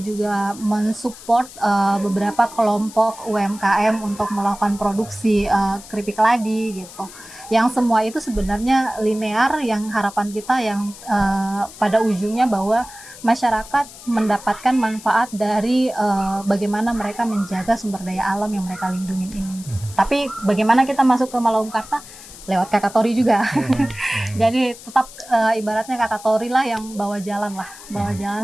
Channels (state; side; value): noise; left; hiss, 17 dB below the sound